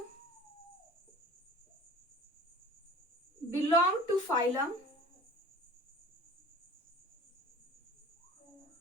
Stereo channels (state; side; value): normal; both; correlation 0.42